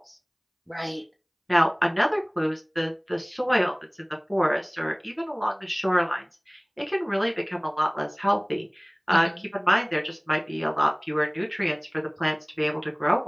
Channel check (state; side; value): identical; both; correlation 1.00